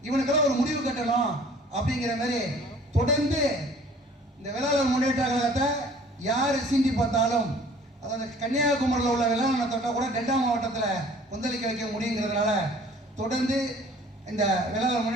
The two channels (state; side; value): normal; both; correlation 0.52